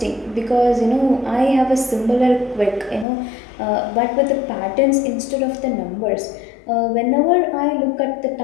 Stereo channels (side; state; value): right; drops out; at 3.1 s